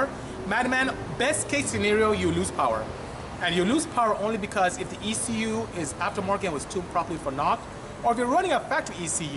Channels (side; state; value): both; identical; correlation 1.00